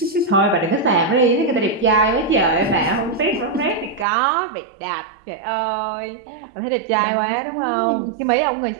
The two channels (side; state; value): left; drops out; at 4.0 s